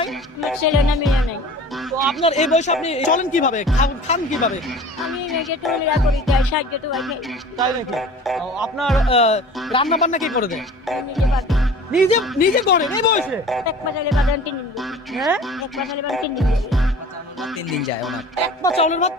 আমার ছেলে না মেয়ে নাই। তো আপনার এই বয়সে আপনি চলেন কিভাবে, খান কিভাবে? আমি মেয়েকে টুলিরা করি, তাই সাহায্য তো ভাই খাই। তাই নাকি? আপনার রান্না বান্না কি করে দেন? আমি নিজে পারি। নিজে নিজে করেন এই বয়সে? এক পাশালে বাদান 3 দিন দিই। হ্যাঁ, এক পাশালে বাদান 3 দিন দিই। 3 দিন যায় ওনার। এক পা চাউলের ভাত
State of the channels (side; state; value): both; normal; correlation 0.43